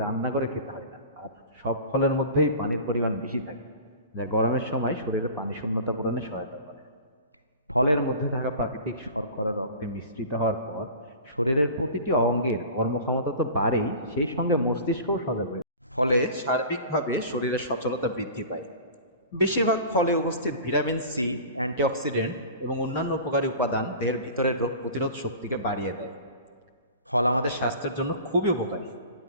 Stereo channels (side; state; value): both; inverted; correlation -0.38